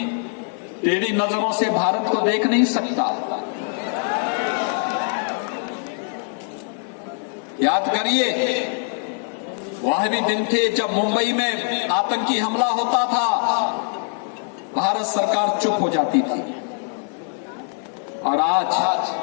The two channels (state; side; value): silent; right; 55 dB below the other